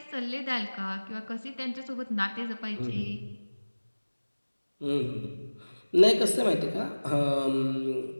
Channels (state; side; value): inverted; both; correlation -1.00